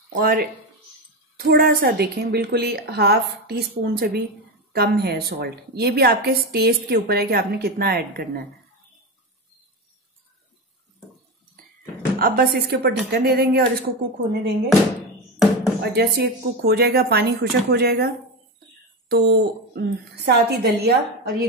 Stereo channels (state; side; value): normal; both; correlation 0.17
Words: और थोड़ा सा देखें, बिल्कुल ही ½ टीस्पून से भी कम है सॉल्ट। ये भी आपके टेस्ट के ऊपर है कि आपने कितना ऐड करना है। अब बस इसके ऊपर ढक्कन दे देंगे और इसको कुक होने देंगे। और जैसे ये कुक हो जाएगा, पानी खुशक हो जाएगा, तो साथ ही दलिया और